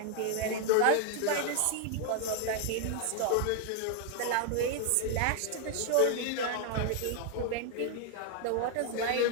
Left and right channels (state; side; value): different; both; correlation 0.00